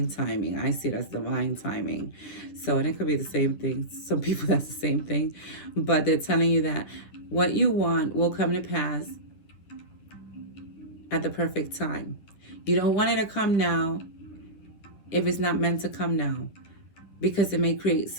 timing. I see it as divine timing. So, and it could be the same thing. Some people, that's the same thing. But they're telling you that what you want will come to pass at the perfect time. You don't want it to come now if it's not meant to come now, because it may create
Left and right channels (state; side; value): late; right; 10 ms